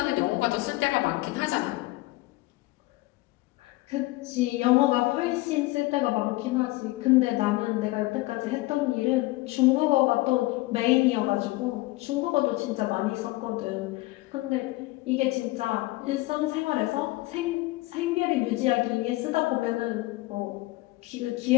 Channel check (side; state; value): right; quieter; 20.6 dB